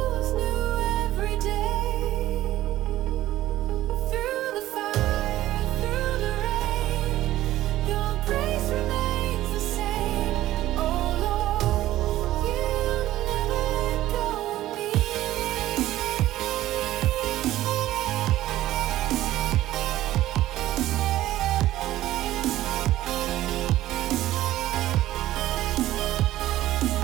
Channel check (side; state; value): left; quieter; 14.7 dB